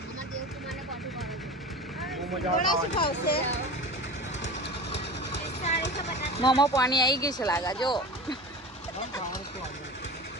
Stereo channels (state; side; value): normal; both; correlation 0.33